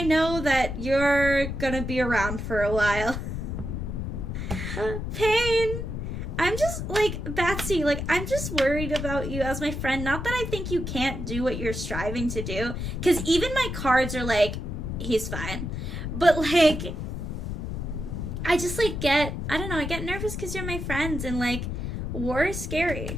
know that you're gonna be around for a while. Pain. I'm just, like, Batsy, like, I'm just worried about you as my friend. Not that I think you can't do what you're striving to do, because even my cards are like, he's fine. But, like, I just, like, I don't know, I get nervous because you're my friends, and, like, war is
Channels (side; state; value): left; noise; rumble, 4 dB below the sound